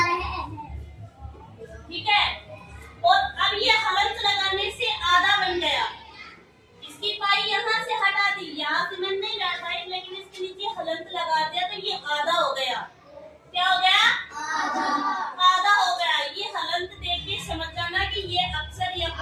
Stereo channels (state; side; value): identical; both; correlation 1.00